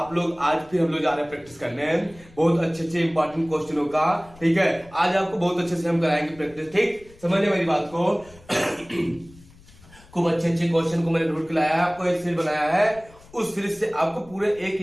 लोग आज फिर हम लोग जा रहे हैं प्रैक्टिस करने बहुत अच्छे इंपॉर्टेंट क्वेश्चनों का। ठीक है, आज आपको बहुत अच्छे से हम कराएंगे प्रैक्टिस। ठीक, समझिए मेरी बात को। खूब अच्छे क्वेश्चन को मैंने ढूंढ के लाया है, आपको एक सीरीज बनाया है, उस सीरीज से आपको पूरे एक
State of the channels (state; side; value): noise; left; rumble, 24 dB below the sound